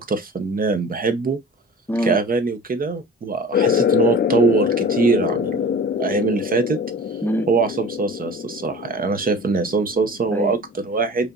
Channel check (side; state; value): both; normal; correlation 0.40